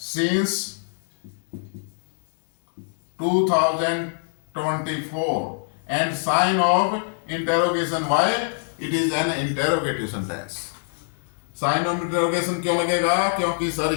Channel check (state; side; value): silent; right; digital silence